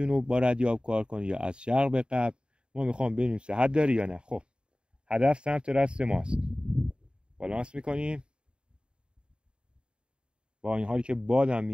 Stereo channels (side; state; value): left; late; 0.052 ms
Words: با ردیاب کار کنه یا از شرق به غرب. ما میخوام ببینیم صحت داره یا نه. خب هدف سمت راست ماست، بالانس میکنیم. با این حالی که بادم